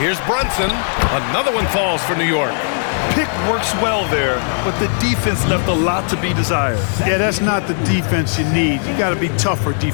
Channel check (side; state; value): right; silent; digital silence